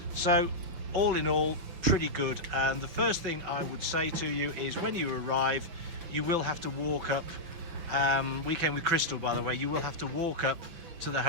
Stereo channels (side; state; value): left; late; 6.1 ms